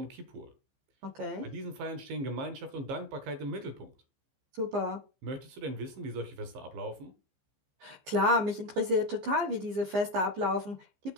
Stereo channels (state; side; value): late; left; 15 ms